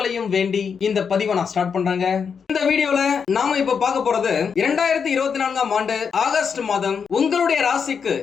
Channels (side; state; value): right; quieter; 6.4 dB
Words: வேண்டி இந்த பதிவை நான் ஸ்டார்ட் பண்றேங்க. இந்த வீடியோல நாம இப்ப பார்க்க போறது 2024ஆம் ஆண்டு ஆகஸ்ட் மாதம் உங்களுடைய ராசிக்கு